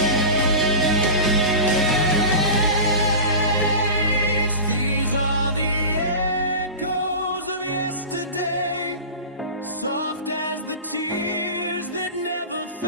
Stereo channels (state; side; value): inverted; both; correlation -0.30